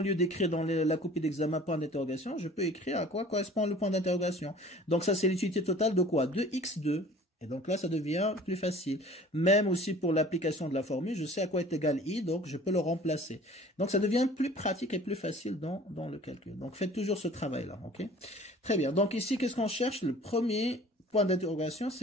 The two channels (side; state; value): both; normal; correlation 0.47